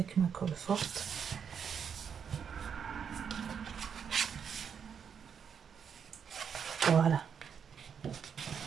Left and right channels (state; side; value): quieter; left; 7.3 dB